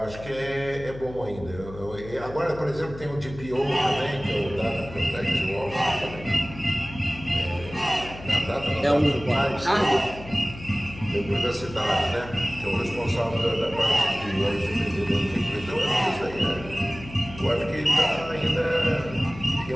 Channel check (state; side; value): noise; left; hum, 14 dB below the sound